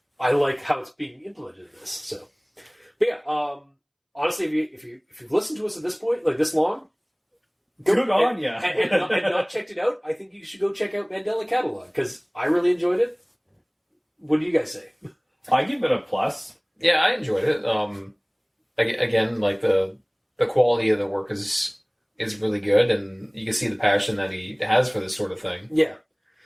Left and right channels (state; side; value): identical; both; correlation 1.00